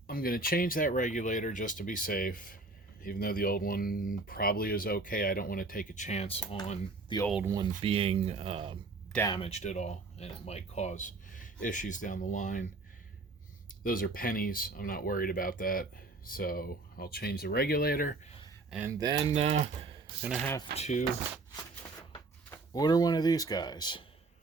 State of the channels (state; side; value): quieter; left; 3.5 dB